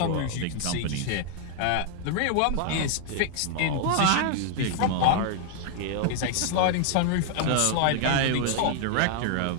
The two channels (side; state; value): both; different; correlation 0.00